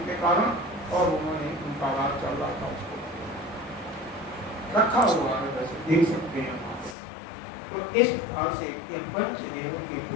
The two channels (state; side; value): drops out; right; at 7.0 s